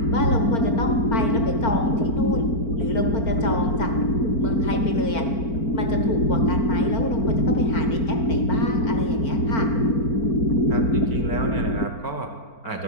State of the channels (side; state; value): right; late; 4.4 ms